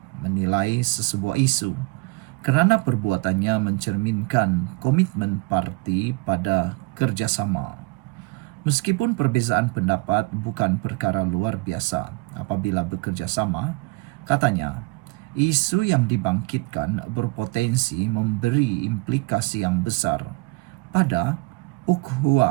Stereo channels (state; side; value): quieter; left; 24.3 dB